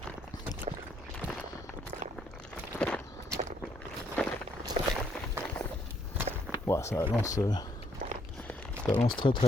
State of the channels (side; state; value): both; normal; correlation 0.70